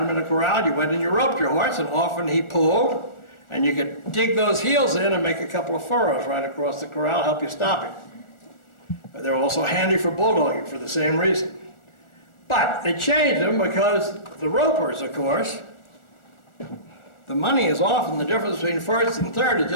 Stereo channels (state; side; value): late; right; 1.4 ms